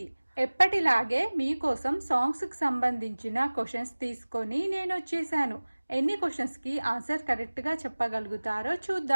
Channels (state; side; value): inverted; both; correlation -1.00